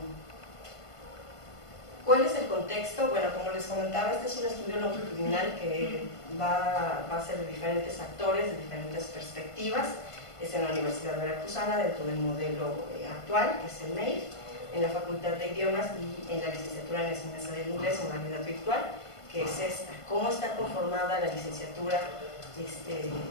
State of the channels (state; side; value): late; right; 1.5 ms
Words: ¿Cuál es el contexto? Bueno, como les comentaba, este es un estudio longitudinal que va a ser de diferentes actores, de diferentes perspectivas. Es en la Universidad Veracruzana, dentro del modelo actual, que es el MEIR, en la Facultad de Idiomas y en la licenciatura en enseñanza del inglés en modalidad virtual, que es esta. ¿Cómo está conformada la licenciatura